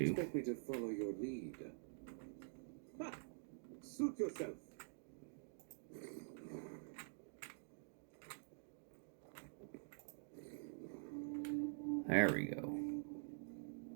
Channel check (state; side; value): silent; left; digital silence